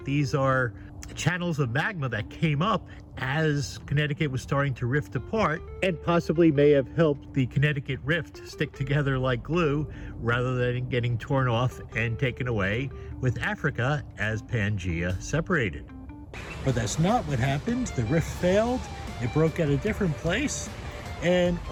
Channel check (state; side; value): identical; both; correlation 1.00